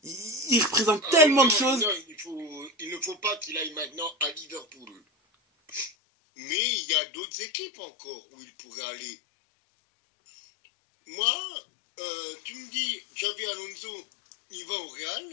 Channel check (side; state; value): right; drops out; at 5.9 s